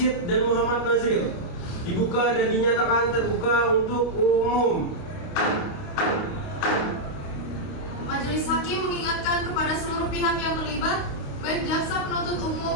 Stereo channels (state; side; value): late; right; 29 ms